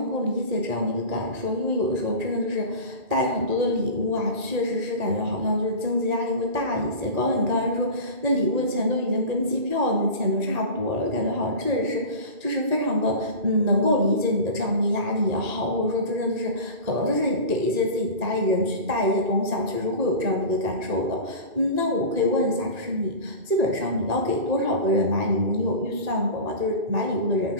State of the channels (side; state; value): left; late; 2.4 ms